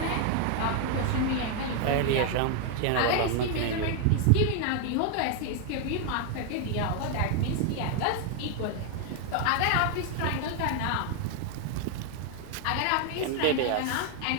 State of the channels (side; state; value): both; different; correlation 0.00